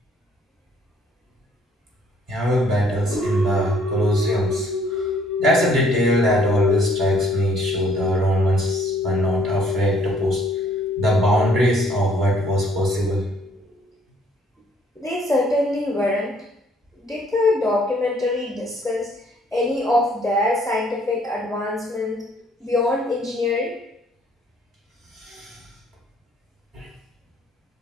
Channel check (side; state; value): both; normal; correlation 0.63